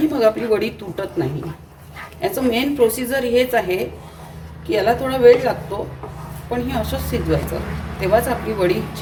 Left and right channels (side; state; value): both; identical; correlation 1.00